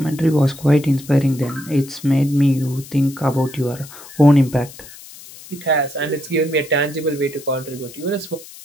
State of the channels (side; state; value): left; noise; hiss, 18 dB below the sound